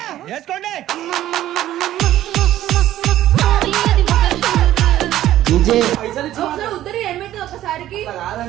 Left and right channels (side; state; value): left; quieter; 13.3 dB